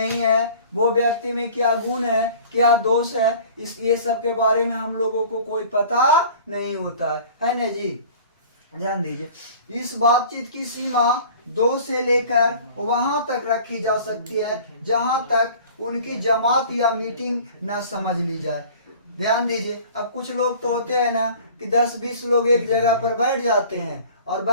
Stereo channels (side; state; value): both; inverted; correlation -0.46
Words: है, वो व्यक्ति में क्या गुण है क्या दोष है, ये सब के बारे में हम लोगों को कोई पता नहीं होता है ना जी। ध्यान दीजिए, इस बातचीत की सीमा 2 से लेकर वहां तक रखी जा सकती है जहां तक उनकी जमात या मीटिंग न समझ ली जाए। ध्यान दीजिए, अब कुछ लोग तो होते हैं ना कि 10-20 लोग एक जगह पर बैठ जाते हैं और